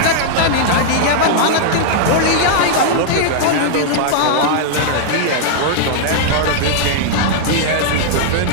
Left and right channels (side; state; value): both; different; correlation -0.01